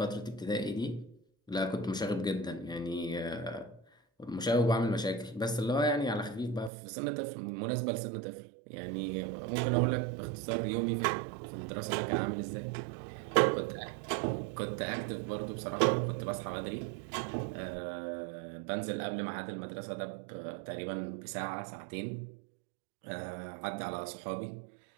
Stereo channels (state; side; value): drops out; left; at 6.7 s